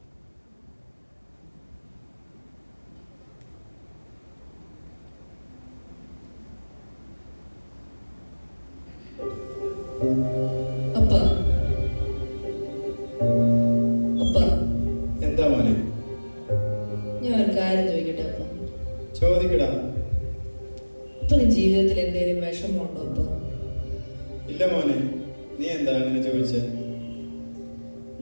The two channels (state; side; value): inverted; both; correlation -1.00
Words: അപ്പ അപ്പ എന്താ മോനെ? ഞാൻ ഒരു കാര്യം ചോദിക്കട്ടെ അപ്പ? ചോദിക്കടാ. അപ്പന് ജീവിതത്തിൽ എന്തെങ്കിലും വിഷമമുണ്ടോ അപ്പ? ഇല്ല മോനെ, നീ എന്താ അങ്ങനെ ചോദിച്ചേ?